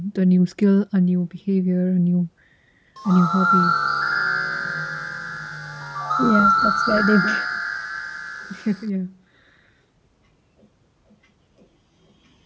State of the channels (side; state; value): both; identical; correlation 1.00